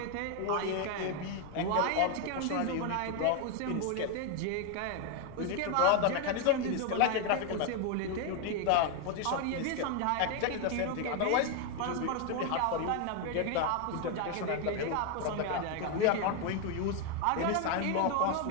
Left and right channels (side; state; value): both; different; correlation 0.01